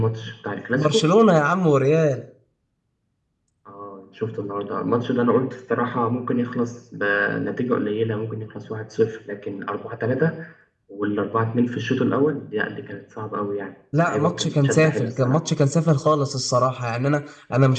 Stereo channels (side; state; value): both; identical; correlation 1.00